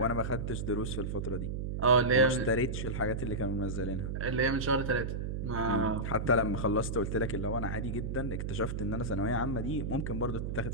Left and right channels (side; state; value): right; noise; hum, 3 dB below the sound